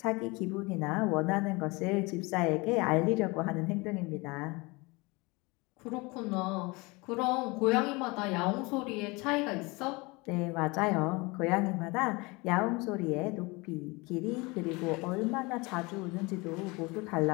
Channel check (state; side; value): quieter; right; 25.3 dB